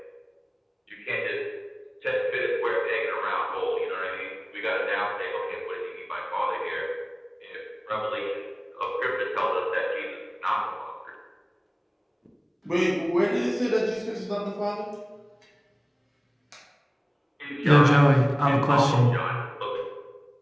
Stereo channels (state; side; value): identical; both; correlation 1.00